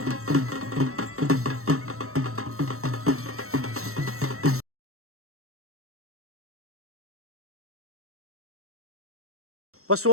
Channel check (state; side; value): late; left; 0.63 ms